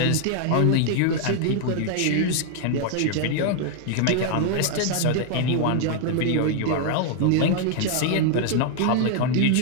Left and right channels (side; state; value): both; different; correlation 0.00